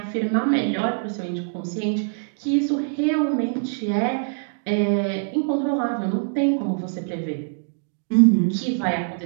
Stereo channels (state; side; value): silent; left; digital silence